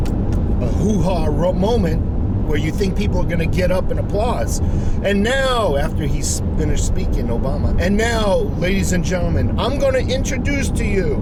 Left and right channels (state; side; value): identical; both; correlation 1.00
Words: hoo-ha moment where you think people are going to get up and applause. And now, after he's finished speaking, Obama, and now, ladies and gentlemen, I'm going to introduce to you